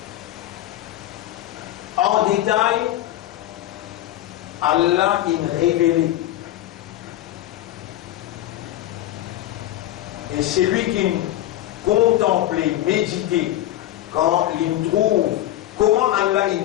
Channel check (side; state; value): right; quieter; 14.0 dB